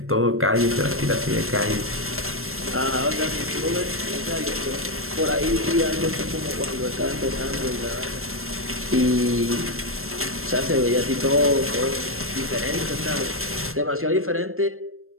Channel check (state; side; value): late; left; 0.62 ms